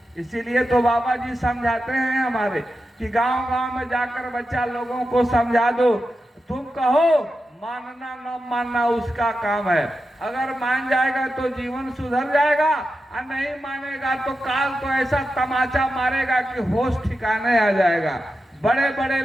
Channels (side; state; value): both; normal; correlation 0.90